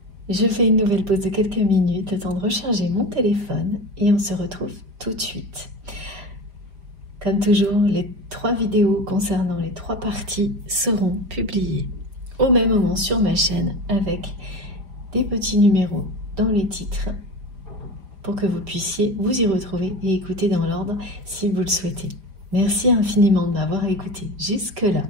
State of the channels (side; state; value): left; late; 4.9 ms